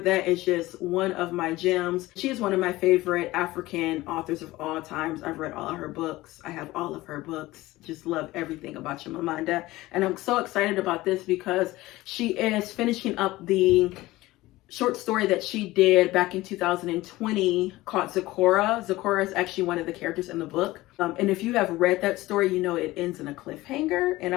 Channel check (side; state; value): right; quieter; 18.3 dB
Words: is just one of my gems. She is one of my favorite African authors of all times. I've read all of her books. I have all of her books. Just love everything about Chimamanda. And I'm so excited about this because she is finishing up the short story that she did back in 2020 called Zecora. Zecora is actually one of the characters in the book. And if you have read that story, you know it ends in a cliffhanger. And